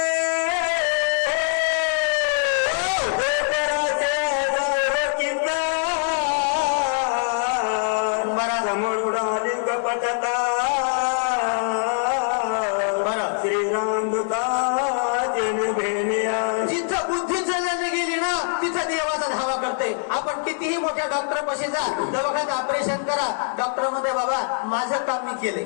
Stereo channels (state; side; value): silent; right; 63 dB below the other